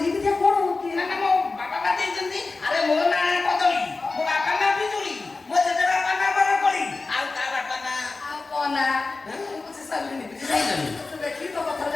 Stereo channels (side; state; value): right; quieter; 3.7 dB